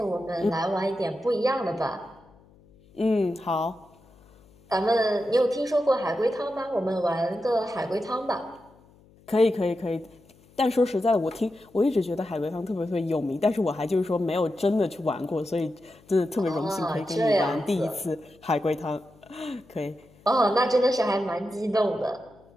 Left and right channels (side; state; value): left; noise; hum, 28 dB below the sound